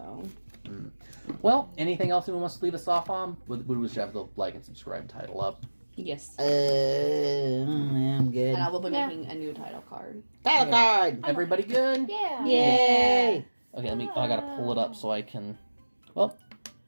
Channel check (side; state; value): both; inverted; correlation -1.00